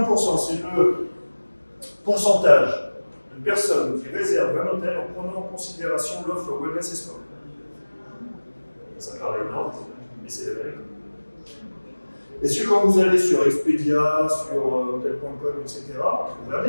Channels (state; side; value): inverted; both; correlation -1.00